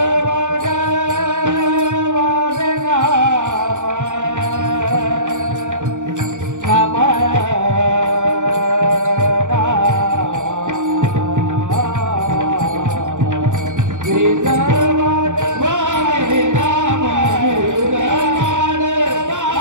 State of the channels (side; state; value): left; late; 0.85 ms